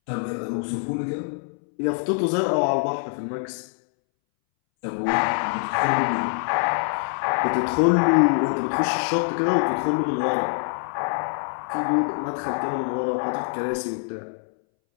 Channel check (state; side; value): silent; right; 62 dB below the other